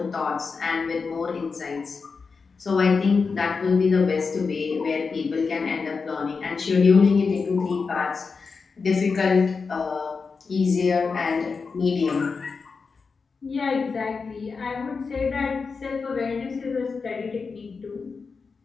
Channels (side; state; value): right; quieter; 4.9 dB